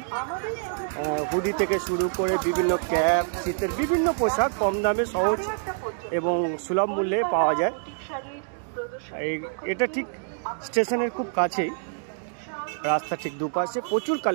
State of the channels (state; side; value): silent; left; digital silence